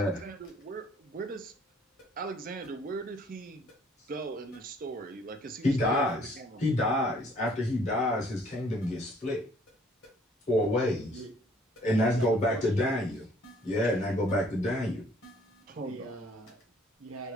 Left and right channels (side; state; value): both; normal; correlation 0.60